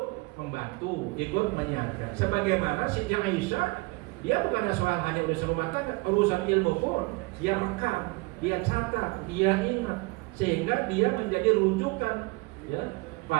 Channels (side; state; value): left; quieter; 25.7 dB